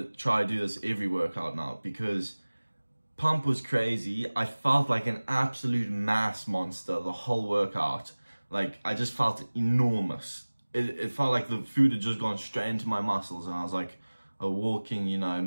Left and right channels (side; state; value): both; inverted; correlation -1.00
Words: try to do this every workout now, because pump was crazy. I felt like an absolute mass monster the whole workout. Like, I just felt enormous. It felt like the food had just gone straight into my muscles, and I was like a walking, you know,